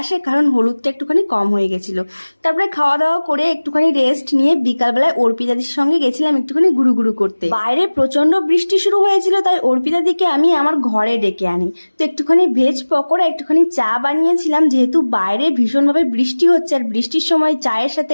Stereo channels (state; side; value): inverted; both; correlation -1.00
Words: কারণ হলুদটা একটুখানি কম হয়ে গেছিল। তারপরে খাওয়া দাওয়া করে একটুখানি রেস্ট নিয়ে বিকালবেলায় অর্পিতাদির সঙ্গে গেছিলাম একটুখানি গুরু গুরু করতে। বাইরে প্রচন্ড বৃষ্টি শুরু হয়েছিল, তাই অর্পিতাদিকে আমি আমার ঘরে ডেকে আনি। তো একটুখানি ভেজ পকোড়া, একটুখানি চা বানিয়েছিলাম, যেহেতু বাইরে ভীষণভাবে বৃষ্টি হচ্ছে, আর বৃষ্টির সময় চায়ের সাথে